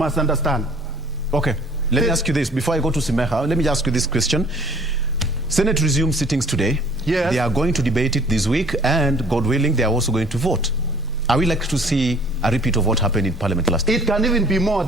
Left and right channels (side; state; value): both; normal; correlation 0.53